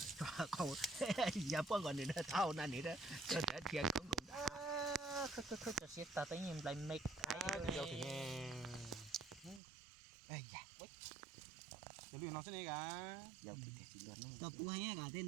không giờ bữa còn nữa thao nè nữa cho để tiền không đủ Khởi sẽ ta tới nhìn lại mệt. Dọc thì nghe. ai dạ Giờ luyện nó sẽ này cả. giờ thì chỉ luôn nó Tập của hay cả tên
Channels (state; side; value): drops out; left; at 9.6 s